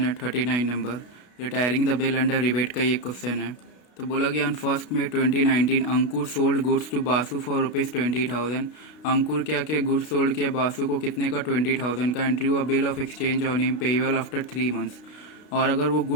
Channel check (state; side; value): late; right; 32 ms